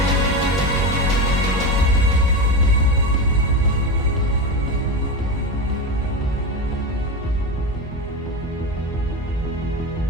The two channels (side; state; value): both; normal; correlation 0.19